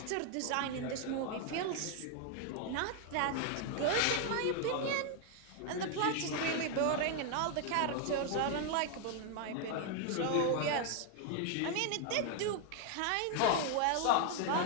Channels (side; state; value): both; different; correlation 0.00